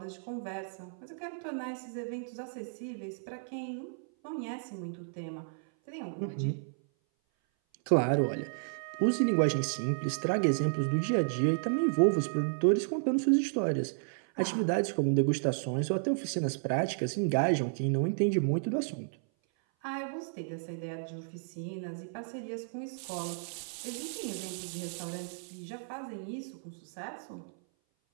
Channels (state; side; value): silent; left; 56 dB below the other